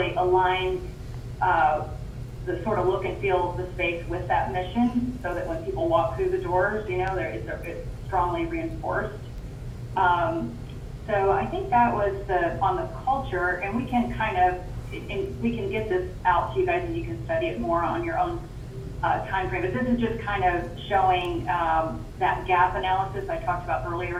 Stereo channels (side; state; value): both; identical; correlation 1.00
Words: align the sort of look and feel of the space with that mission, so that when people walk through the doors, it's strongly reinforced. So I think that was on the culture, and we can we can get this out to you guys and you can study it more on your own time frame. But this is just kind of showing that gap analysis I talked about